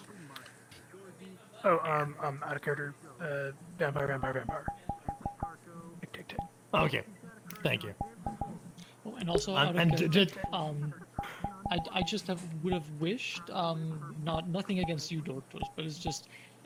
Oh, out of character. Vampire. Tick. Okay. Thank you. Oh, and also, out of character, I just would have wished, nothing against you, Doctors, but it's just,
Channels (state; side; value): identical; both; correlation 1.00